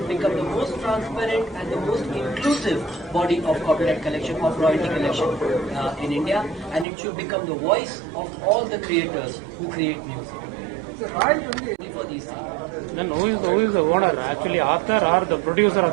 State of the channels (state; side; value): drops out; left; at 6.9 s